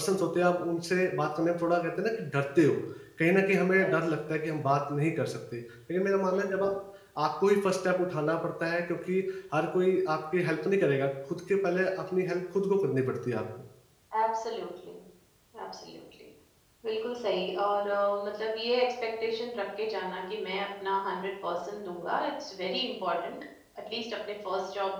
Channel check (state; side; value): identical; both; correlation 1.00